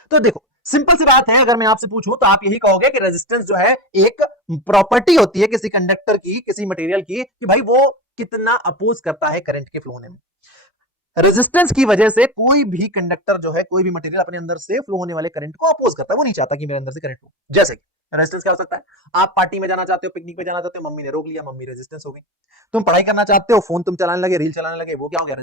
तो देखो सिंपल सी बात है, अगर मैं आपसे पूछूं तो आप यही कहोगे कि रेजिस्टेंस जो है एक प्रॉपर्टी होती है किसी कंडक्टर की, किसी मटेरियल की, कि भाई वो कितना अपोज करता है करंट के फ्लो होने में। रेजिस्टेंस की वजह से कोई भी कंडक्टर जो है, कोई भी मटेरियल अपने अंदर से फ्लो होने वाले करंट को अपोज करता है, वो नहीं चाहता कि मेरे अंदर से करंट फ्लो। जैसे रेजिस्टेंस क्या हो सकता है, आप पार्टी में जाना चाहते हो, पिकनिक पे जाना चाहते हो, मम्मी ने रोक लिया, मम्मी रेजिस्टेंस हो गई। तुम पढ़ाई करना चाहते हो, फोन तुम चलाने लगे, रील चलाने लगे, वो क्या हो गया,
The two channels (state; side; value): normal; both; correlation 0.22